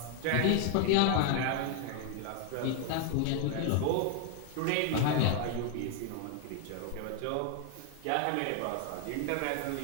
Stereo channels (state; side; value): different; both; correlation 0.00